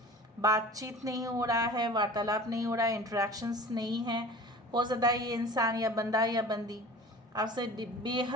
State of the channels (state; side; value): normal; both; correlation 0.40